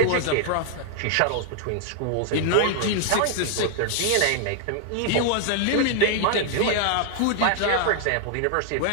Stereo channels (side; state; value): both; different; correlation 0.00